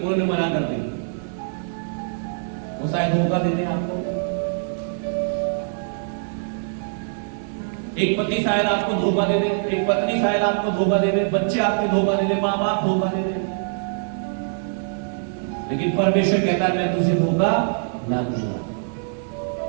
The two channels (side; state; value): left; silent; 63 dB below the other